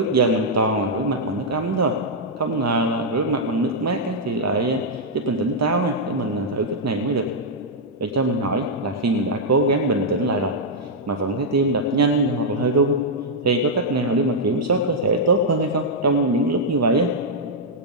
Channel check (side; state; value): both; normal; correlation -0.06